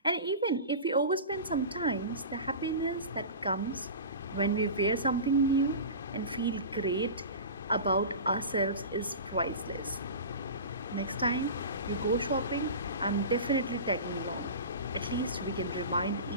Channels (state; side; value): inverted; both; correlation -0.31